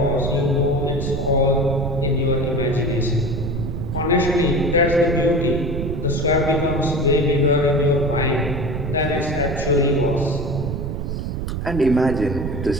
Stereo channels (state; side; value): noise; right; rumble, 4 dB below the sound